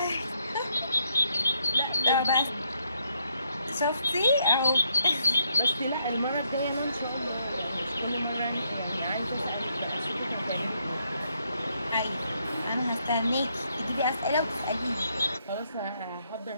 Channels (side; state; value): both; inverted; correlation -0.73